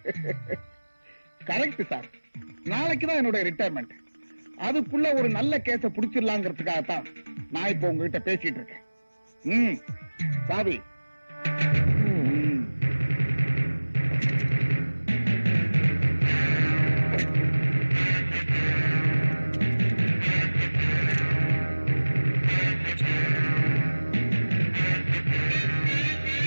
Correct sir. நாளைக்கு தான் என்னோட ரிட்டையர்மெண்ட். அதுக்குள்ள ஒரு நல்ல கேஸ புடிச்சிடலாங்கிறதுக்காகத்தான் நான் இப்ப உங்ககிட்ட பேசிட்டு இருக்கேன். சாவி.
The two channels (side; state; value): both; inverted; correlation -1.00